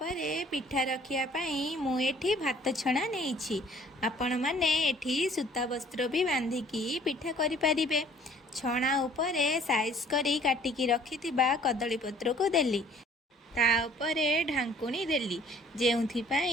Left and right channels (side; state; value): both; normal; correlation 0.56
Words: पिठा रखिया पई मु एठी भात छणा नेइछि। आपण माने एठी सूता वस्त्र भी बांधिकी पिठा करि पारिबे। छणा उपरे साइज करी काटिकी रखिथिबा कदली पत्र को देली। ता उपरे ढांकुणी देली जेउथि